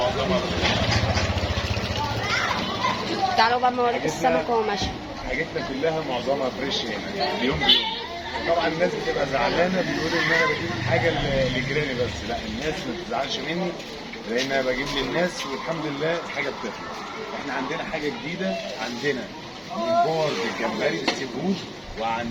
تعالوا بقى اوريكم السمك وهو ماشي. حاجتنا كلها معظمها فريش هنا اليوم بيوم. طبعا الناس بتبقى زعلانه، بتقول ان انا بجيب حاجه لجيراني، بس لا، الناس ما تزعلش مني لان انا بجيب للناس والحمد لله الحاجه بتطلع. احنا عندنا حاجه جديده، عندنا ممبار بالجمبري بالسي فود،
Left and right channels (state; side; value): identical; both; correlation 1.00